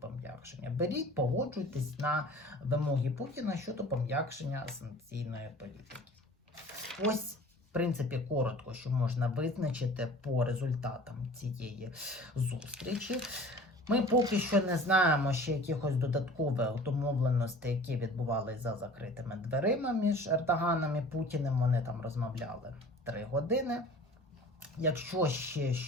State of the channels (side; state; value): both; normal; correlation 0.45